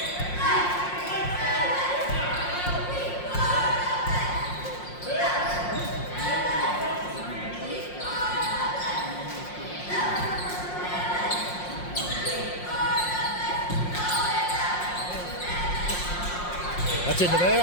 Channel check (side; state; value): right; late; 5.6 ms